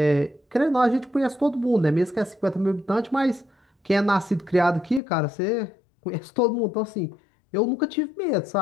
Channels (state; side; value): drops out; right; at 5.0 s